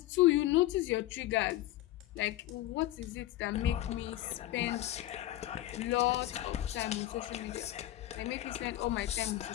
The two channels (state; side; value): quieter; right; 15.0 dB